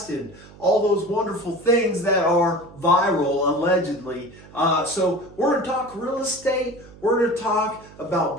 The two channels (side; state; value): right; noise; hum, 21 dB below the sound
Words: and all those wonderful things that are viral, allegedly. So we're going to talk real estate. We're going to talk about